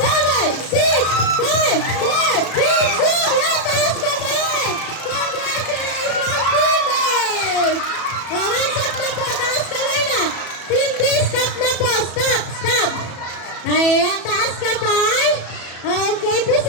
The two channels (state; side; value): late; right; 34 ms